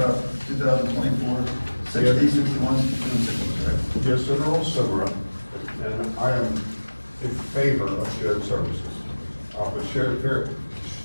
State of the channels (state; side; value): inverted; both; correlation -1.00